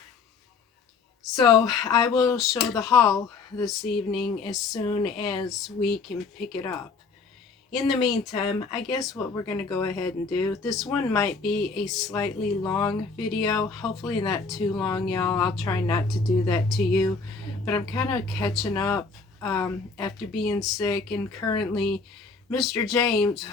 So I will show the haul this evening as soon as we can pick it up. In the meantime, I guess what we're going to go ahead and do, this one might be a slightly long video, hopefully not too long, y'all. I'll try not to do that to you, but I'm kind of catching up after being sick, and currently Mr. James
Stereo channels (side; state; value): right; quieter; 4.6 dB